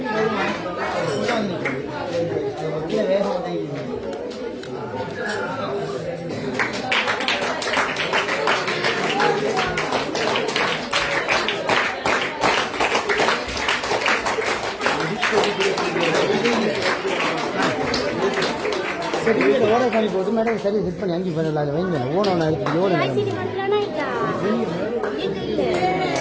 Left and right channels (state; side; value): identical; both; correlation 1.00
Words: ಸರ್ಟಿಫಿಕೇಟ್ ಓಡರ್ ಮಾಡಿಬೋದು ಮೇಡಮ್ ಸರಿ ಹಿಟ್ பண்ணி அங்கே பண்ணல அது வைங்க ஓனோன எடுத்து ஓடு ஐசிடி மட்டும்தானா இருக்கா